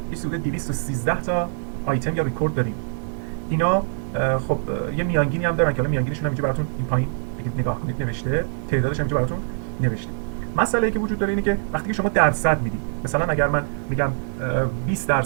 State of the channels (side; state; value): left; silent; digital silence